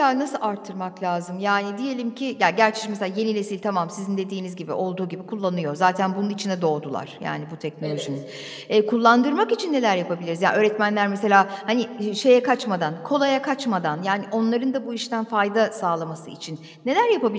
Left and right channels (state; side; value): identical; both; correlation 1.00